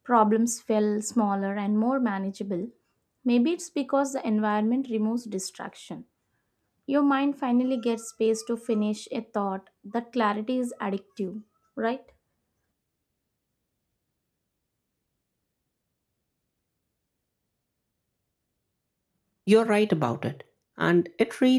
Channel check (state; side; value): identical; both; correlation 1.00